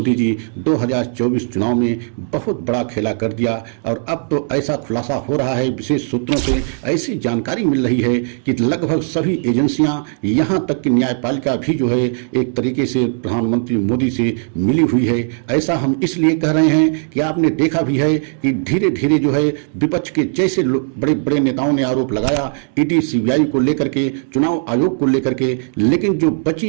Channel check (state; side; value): silent; left; 68 dB below the other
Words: जी 2024 चुनाव में बहुत बड़ा खेला कर दिया। और अब तो ऐसा खुलासा हो रहा है, विशेष सूत्रों से ऐसी जानकारी मिल रही है कि लगभग सभी एजेंसियां, यहाँ तक कि न्यायपालिका भी जो है एक तरीके से प्रधानमंत्री मोदी से मिली हुई है। ऐसा हम इसलिए कह रहे हैं कि आपने देखा भी है कि धीरे धीरे जो है विपक्ष के जैसे बड़े बड़े नेताओं ने आरोप लगाया ईडी सीबीआई को लेकर के, चुनाव आयोग को लेकर के, लेकिन जो